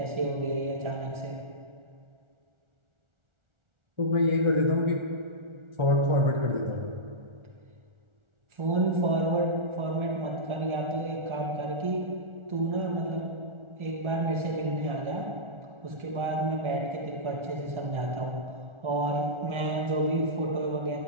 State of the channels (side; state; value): left; late; 1.4 ms